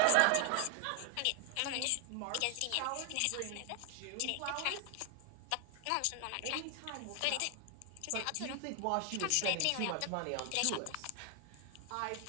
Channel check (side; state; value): both; different; correlation 0.00